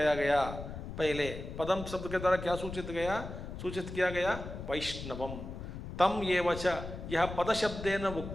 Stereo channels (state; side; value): noise; left; rumble, 9 dB below the sound